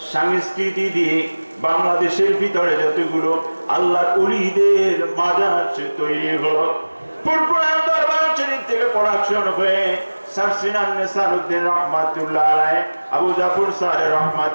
সংস্কৃতি দিয়ে বাংলাদেশের ভিতরে যতগুলো আল্লাহর ওলিদের মাজার তৈরি হলো, ফুরফুরা দরবার শরীফ থেকে প্রোডাকশন হয়ে সারসিনান নেসারউদ্দিন রহমাতুল্লাহ আলাইহি, আবু জাফর সাহেব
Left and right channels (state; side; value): inverted; both; correlation -1.00